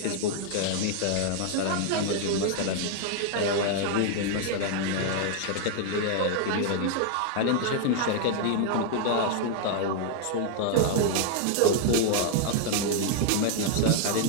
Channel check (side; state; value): both; different; correlation 0.00